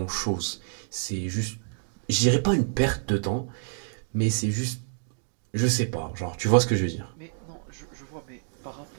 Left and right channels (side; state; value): left; silent; digital silence